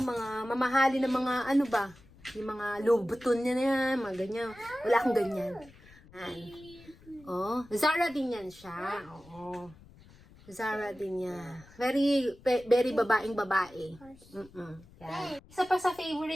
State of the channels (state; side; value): noise; left; rumble, 24 dB below the sound